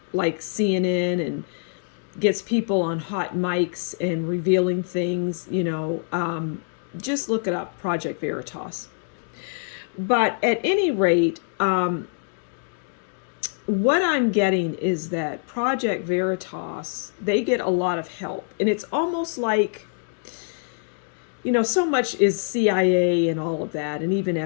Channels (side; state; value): right; silent; 62 dB below the other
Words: like CNN and gets people on hot mics and revealing things. Just look it up, Project Veritas. But at any rate, what I'm getting is that Project Veritas, they get a lot of help. And it's almost like, so much is CIA and all of that, and even